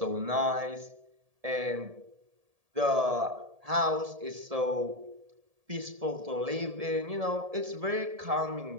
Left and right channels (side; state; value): left; late; 1.7 ms